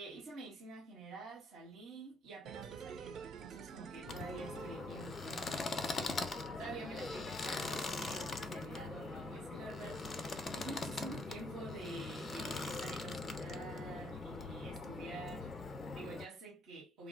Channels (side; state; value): both; normal; correlation 0.70